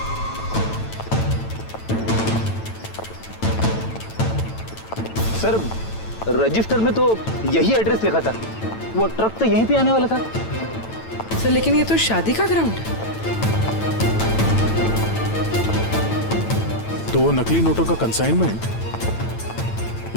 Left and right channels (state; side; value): late; right; 9.0 ms